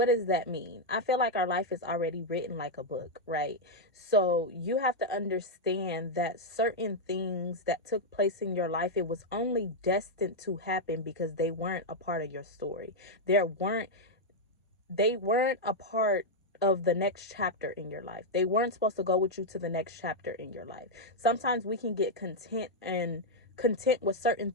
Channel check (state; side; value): normal; both; correlation -0.02